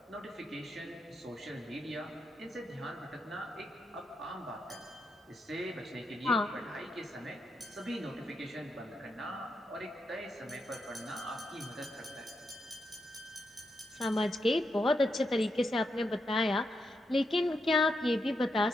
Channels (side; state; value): both; normal; correlation 0.84